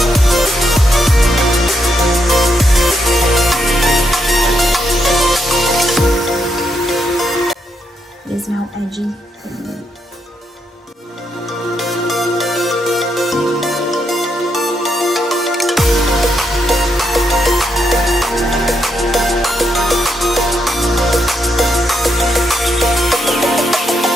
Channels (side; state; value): both; normal; correlation 0.80